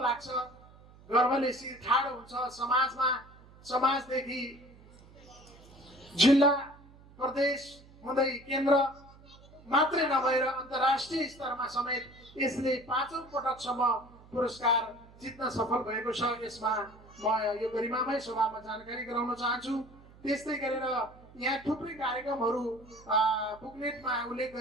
गर्वले शिर ठाडो हुन्छ। समाजदेखि जिल्ला प्रदेश हुँदै केन्द्र मात्रै नभएर अन्तर्राष्ट्रिय स्तरमा समेत यसले 5औं पटकसम्म पुरस्कार जित्न सफल भएको छ। यसमा म यो गरिमामय सभामा जानकारी गराउन चाहन्छु। त्यस्तै गरेर यहाँ थुप्रै कार्यक्रमहरू बुकलेटमा उल्लेख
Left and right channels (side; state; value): right; noise; hum, 23 dB below the sound